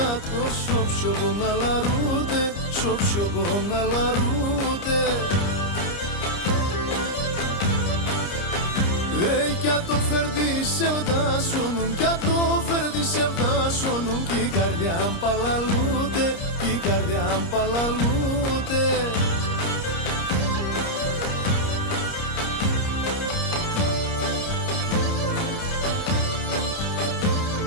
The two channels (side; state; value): right; late; 30 ms